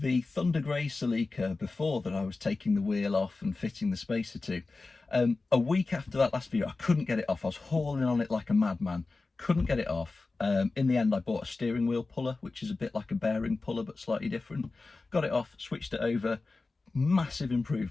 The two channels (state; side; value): quieter; right; 3.6 dB